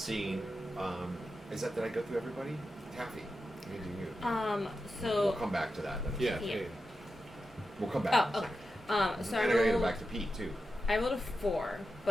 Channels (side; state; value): both; normal; correlation 0.90